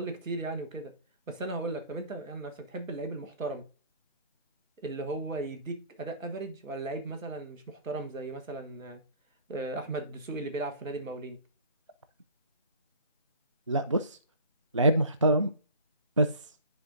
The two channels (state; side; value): inverted; both; correlation -0.45